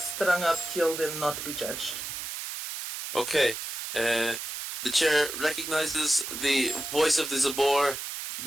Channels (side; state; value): right; noise; hiss, 6 dB below the sound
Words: up, killed, and not be judged. Okay, the chair recognizes the voice of the Zabor,